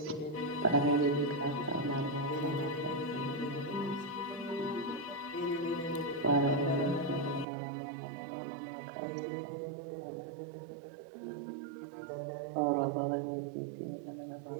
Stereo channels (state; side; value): drops out; left; at 7.5 s